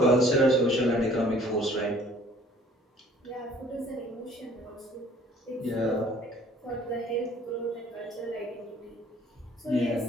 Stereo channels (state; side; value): normal; both; correlation 0.55